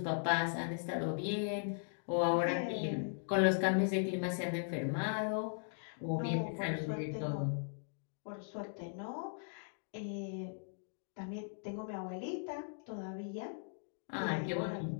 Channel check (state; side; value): silent; right; digital silence